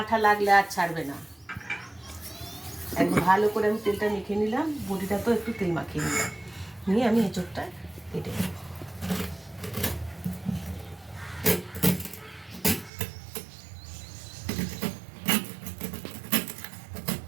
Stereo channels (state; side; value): drops out; left; at 12.9 s